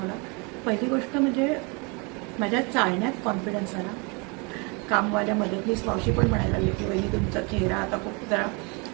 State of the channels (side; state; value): left; quieter; 31.3 dB